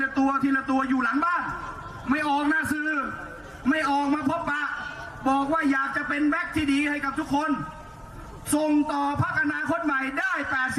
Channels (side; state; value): both; identical; correlation 1.00